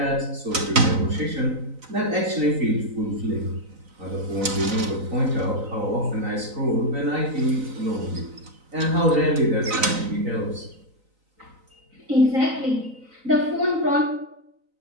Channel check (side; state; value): left; late; 4.0 ms